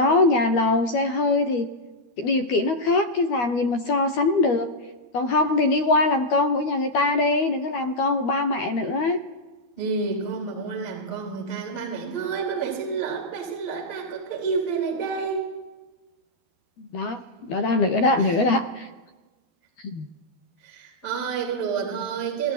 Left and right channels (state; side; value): late; right; 12 ms